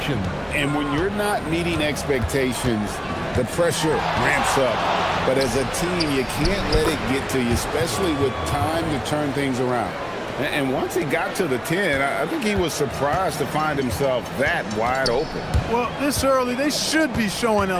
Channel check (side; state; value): both; identical; correlation 1.00